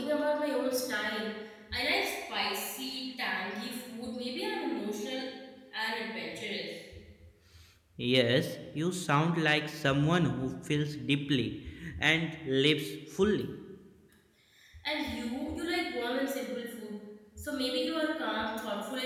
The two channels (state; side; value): identical; both; correlation 1.00